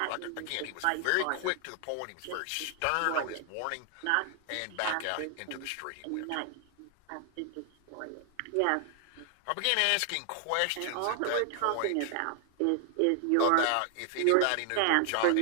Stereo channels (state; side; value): different; both; correlation 0.00